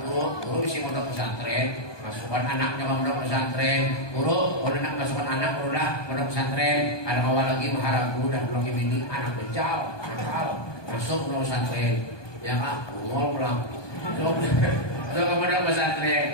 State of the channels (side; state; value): right; late; 1.2 ms